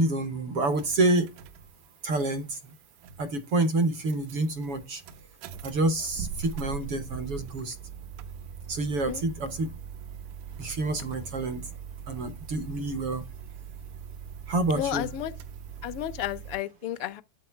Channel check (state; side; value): late; left; 7.1 ms